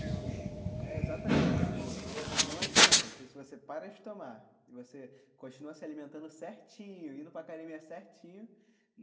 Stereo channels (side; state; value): both; identical; correlation 1.00